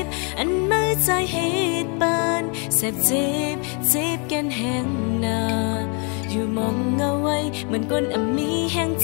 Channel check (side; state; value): right; quieter; 35.4 dB